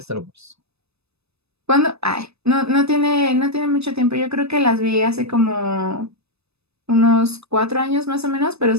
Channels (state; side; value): late; left; 0.79 ms